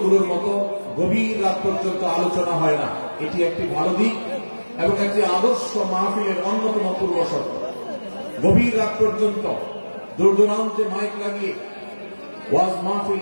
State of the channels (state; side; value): inverted; both; correlation -1.00